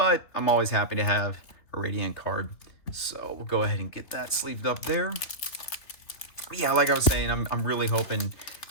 I'm always happy to have a Radiant card. So we'll go ahead and get that sleeved up there. Yeah, like I was saying, I'm really hoping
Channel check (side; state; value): right; late; 3.5 ms